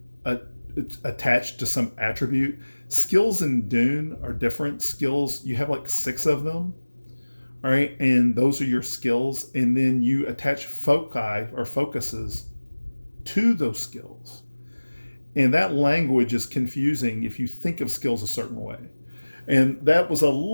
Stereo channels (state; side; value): inverted; both; correlation -1.00